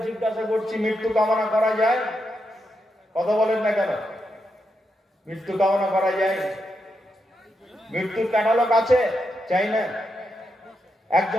জিজ্ঞাসা করছি, মৃত্যু কামনা করা যায়? কথা বলেন না কেন? মৃত্যু কামনা করা যায়? মৃত্যুর ক্যাটালগ আছে? চাই না?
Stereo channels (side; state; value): both; normal; correlation 0.84